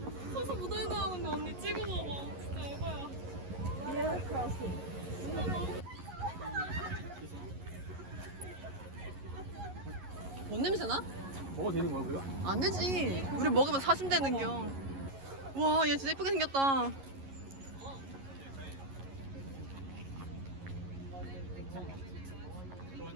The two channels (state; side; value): late; left; 11 ms